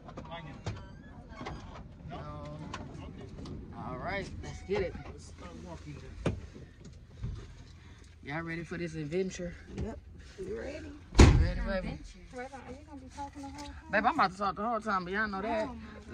No? Okay. All right, let's get it. Let's start walking then. Y'all ready for this adventure? Yep. You ready? Ready, baby? Are you gonna be talking the whole time? Babe, I'm about to talk the whole time, but y'all know that.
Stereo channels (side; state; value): both; identical; correlation 1.00